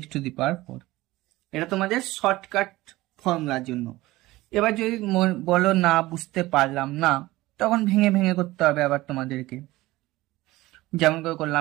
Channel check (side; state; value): left; quieter; 18.5 dB